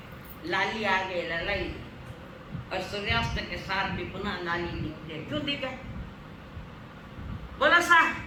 लाली आ गए ललाई, और सूर्यास्त के साथ भी पुनः लाली दिखती है। क्यों दिखे? बोलो सा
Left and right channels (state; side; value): identical; both; correlation 1.00